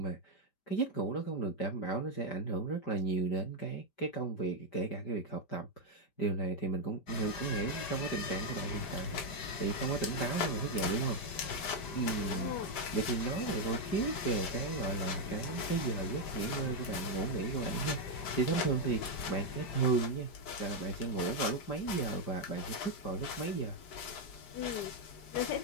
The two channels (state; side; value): late; right; 5.1 ms